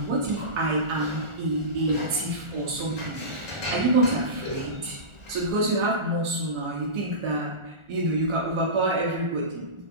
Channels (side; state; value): left; late; 1.4 ms